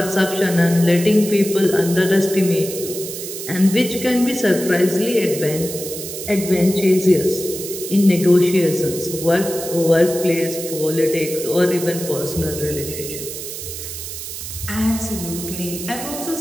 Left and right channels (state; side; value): noise; right; hiss, 8 dB below the sound